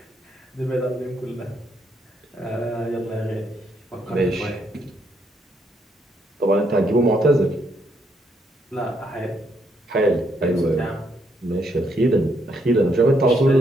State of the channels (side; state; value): both; normal; correlation 0.75